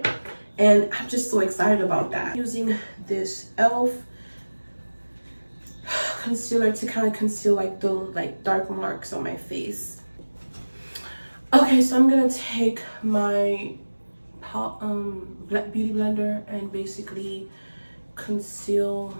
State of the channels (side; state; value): both; inverted; correlation -1.00